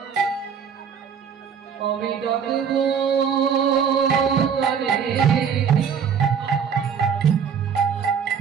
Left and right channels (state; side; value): quieter; left; 7.1 dB